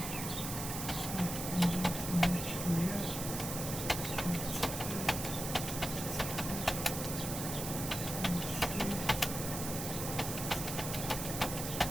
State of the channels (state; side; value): noise; right; hiss, 5 dB below the sound